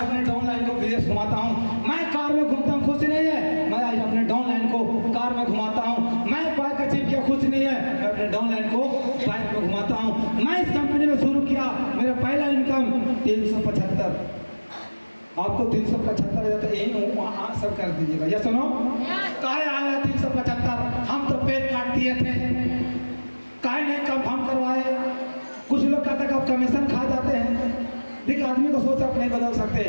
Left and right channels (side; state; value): both; inverted; correlation -1.00